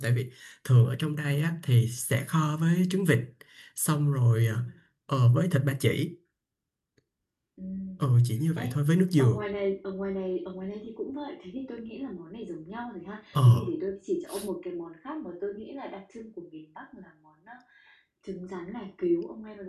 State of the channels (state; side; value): identical; both; correlation 1.00